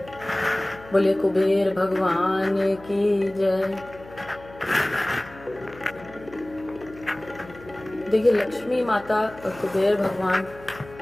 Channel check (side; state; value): left; noise; hum, 20 dB below the sound